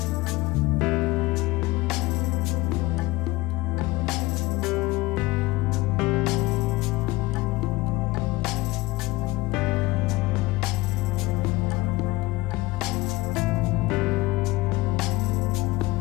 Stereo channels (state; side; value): quieter; right; 20.7 dB